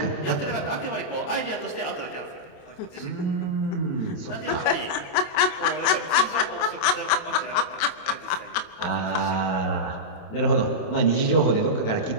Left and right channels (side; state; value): right; late; 27 ms